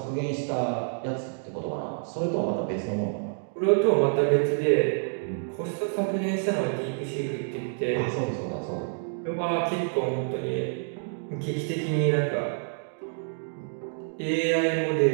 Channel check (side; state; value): left; silent; digital silence